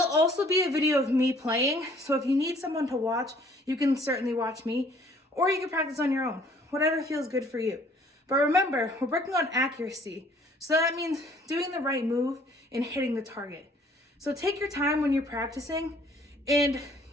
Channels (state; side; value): normal; both; correlation 0.58